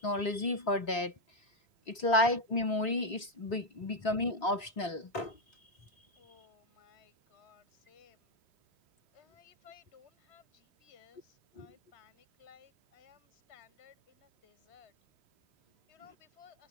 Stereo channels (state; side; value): late; right; 3.6 ms